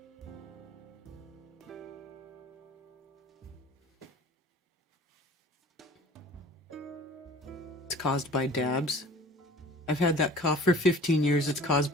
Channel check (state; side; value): normal; both; correlation 0.45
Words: It's caused by dabs. I've had that cough for 15 years. It's caused